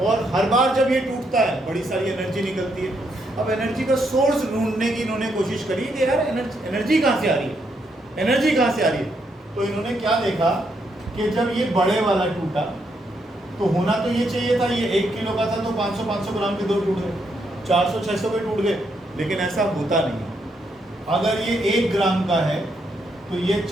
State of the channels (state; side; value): normal; both; correlation 0.77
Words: हर बार जब ये टूटता है बड़ी सारी एनर्जी निकलती है। अब एनर्जी का सोर्स ढूंढने की इन्होंने कोशिश करी कि यार एनर्जी कहाँ से आ रही है, एनर्जी कहाँ से आ रही है। तो इन्होंने क्या देखा कि जब ये बड़े वाला टूटा तो होना तो ये चाहिए था, ये 1 किलो का था तो 500 ग्राम के 2 टूट गए, 400-600 के टूट गए, लेकिन ऐसा होता नहीं है। अगर ये 1 ग्राम का है तो ये